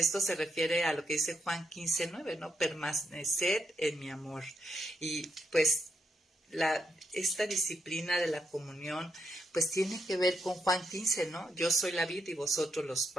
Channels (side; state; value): both; normal; correlation 0.80